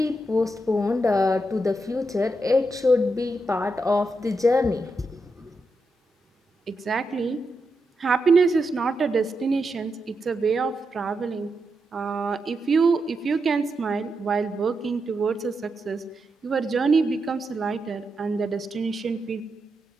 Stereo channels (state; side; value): normal; both; correlation 0.85